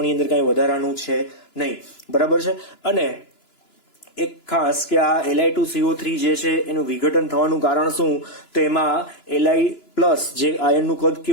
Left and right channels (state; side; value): late; right; 2.9 ms